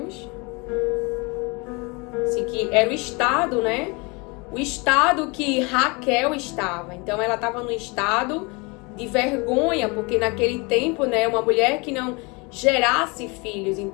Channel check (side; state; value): right; quieter; 28.5 dB